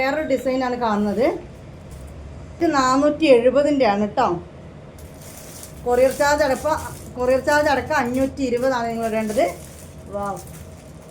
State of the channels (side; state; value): both; identical; correlation 1.00